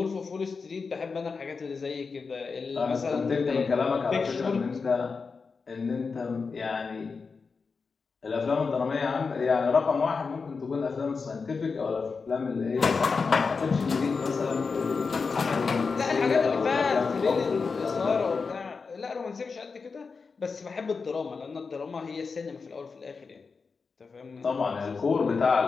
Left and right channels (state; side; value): quieter; right; 4.9 dB